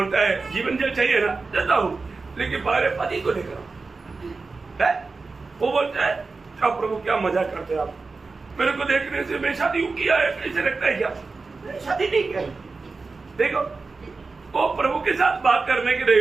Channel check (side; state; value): left; quieter; 4.1 dB